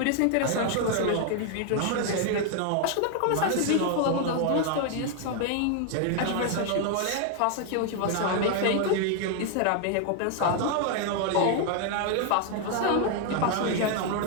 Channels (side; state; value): both; different; correlation 0.00